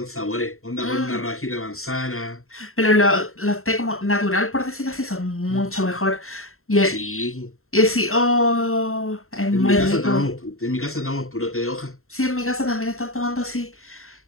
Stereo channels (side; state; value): right; late; 0.62 ms